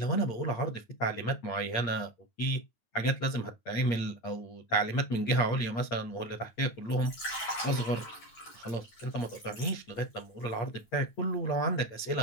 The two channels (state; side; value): late; right; 8.6 ms